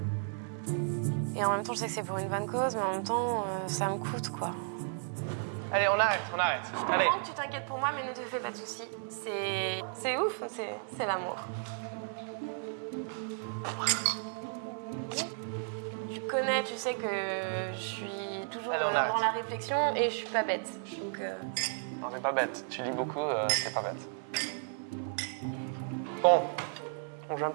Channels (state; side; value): silent; left; 55 dB below the other